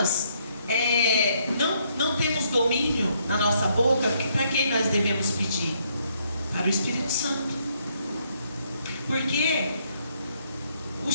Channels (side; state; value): both; inverted; correlation -0.71